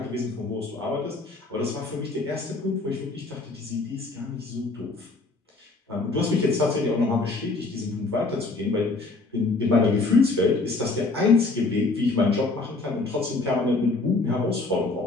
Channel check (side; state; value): right; quieter; 3.5 dB